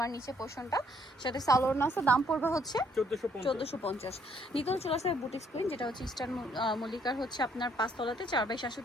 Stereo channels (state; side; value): normal; both; correlation 0.67